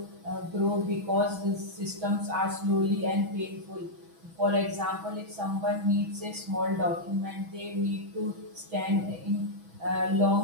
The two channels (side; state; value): left; late; 6.1 ms